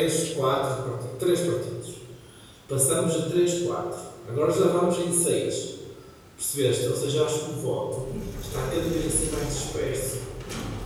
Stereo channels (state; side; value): identical; both; correlation 1.00